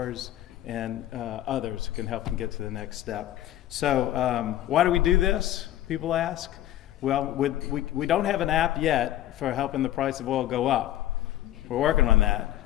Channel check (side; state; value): right; quieter; 13.3 dB